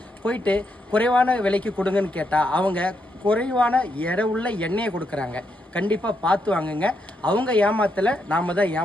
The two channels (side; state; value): both; normal; correlation 0.79